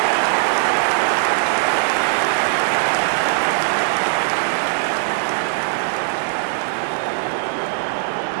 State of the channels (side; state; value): left; silent; digital silence